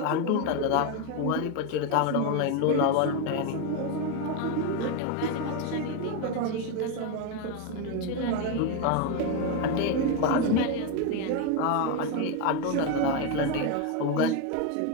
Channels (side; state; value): both; different; correlation 0.02